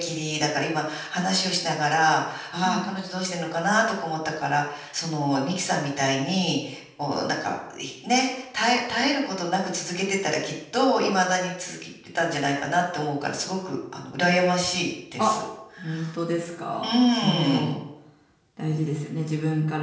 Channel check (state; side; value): identical; both; correlation 1.00